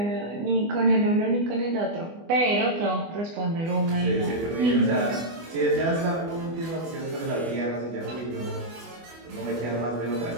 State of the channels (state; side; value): late; left; 24 ms